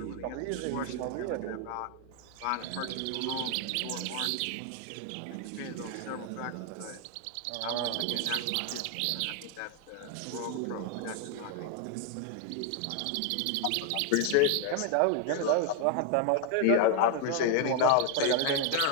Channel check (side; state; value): both; different; correlation 0.01